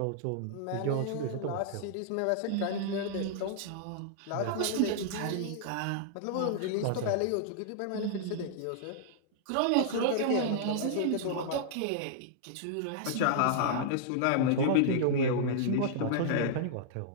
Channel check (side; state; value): both; different; correlation -0.01